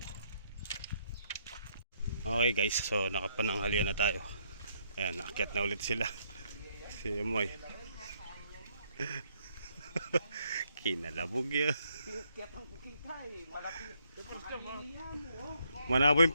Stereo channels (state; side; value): inverted; both; correlation -0.72